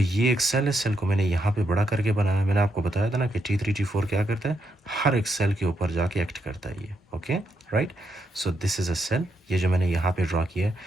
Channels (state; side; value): normal; both; correlation 0.80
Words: एक सेल है, सेल को मैंने यहाँ पे बड़ा करके बनाया. मैंने आपको बताया था ना कि T3 T4 क्या करता है, हर एक सेल के ऊपर जाके एक्ट करता है ये, okay, right? So this is a cell, ये जो मैंने यहाँ पे ड्रा किया है.